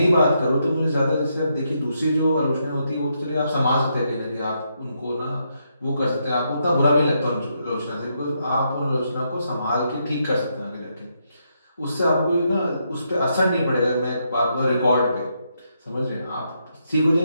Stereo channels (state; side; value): inverted; both; correlation -0.79